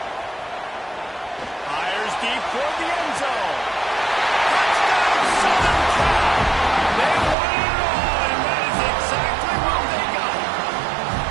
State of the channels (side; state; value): left; drops out; at 7.4 s